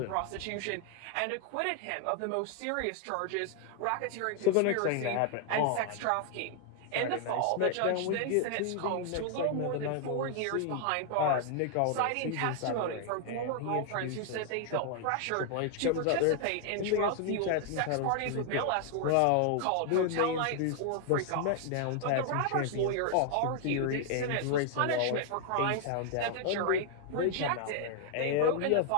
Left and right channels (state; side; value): different; both; correlation 0.00